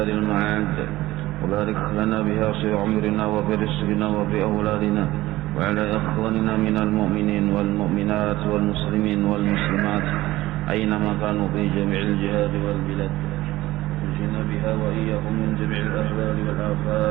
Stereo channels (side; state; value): left; quieter; 17.2 dB